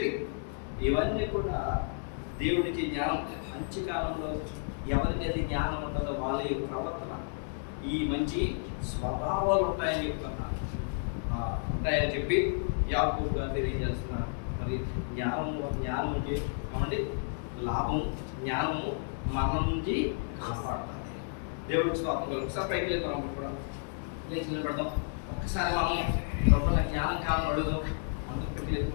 ఇవన్నీ కూడా దేవుడికి జ్ఞానం. మంచి కాలంలో ఎవరికి అది జ్ఞానం ఉంటుందో వాళ్ళ యొక్క ప్రవర్తన, ఈ మంచి స్వభావాలు ఉంటాయని చెప్తున్నారు. ఉంటాయని చెప్పి యాకోబు గారు తెలియజేస్తున్నారు. మరి జ్ఞానం అంటే ఏమండి లాభం. జ్ఞానము మన నుంచి కాపాడుతుంది. దేవుడికి స్తోత్రం కలుగు. ఒకసారి పైకి వెళ్తాం, కూడా లేచి నిలబడతాం. ఒక్కసారి మనం లోపల జ్ఞానం కావాలని అడుగుదాం. అందరూ పైకి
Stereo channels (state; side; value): silent; right; digital silence